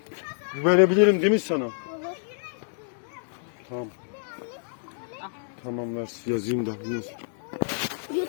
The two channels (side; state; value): right; silent; digital silence